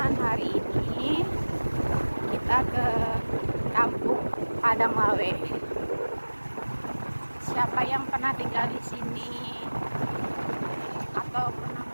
Hari ini kita ke Kampung Padang Lawe. Siapa yang pernah tinggal di sini atau pernah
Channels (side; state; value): both; inverted; correlation -1.00